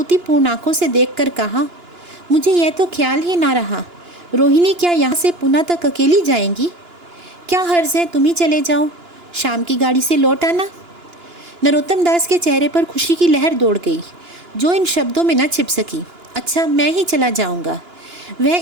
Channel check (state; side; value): late; left; 2.9 ms